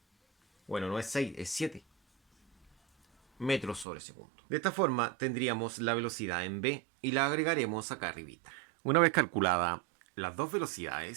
Bueno, no es 6, es 7 metros sobre segundo. De esta forma tendríamos la velocidad en B y la agregaremos acá arribita. Una vez calculada las dos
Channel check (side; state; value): left; drops out; at 3.9 s